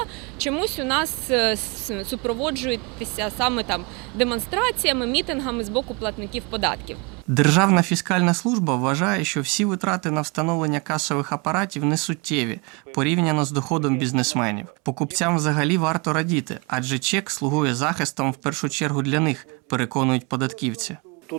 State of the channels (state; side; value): quieter; left; 30.2 dB